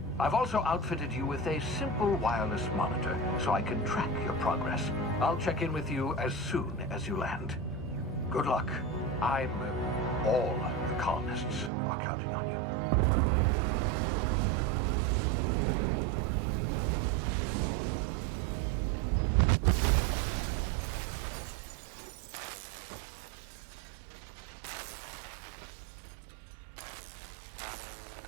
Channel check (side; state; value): left; drops out; at 11.7 s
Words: I've also outfitted you with a simple wireless monitor, so I can track your progress. I'll check in with you as soon as you land. Good luck. All the colonists are counting on you.